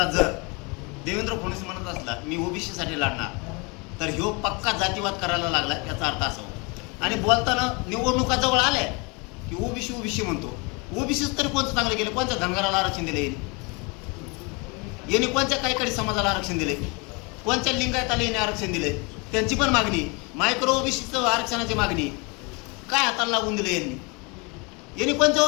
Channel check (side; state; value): right; quieter; 29.7 dB